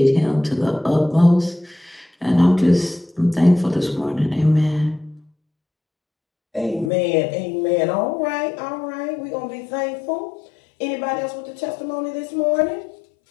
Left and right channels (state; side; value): drops out; right; at 6.9 s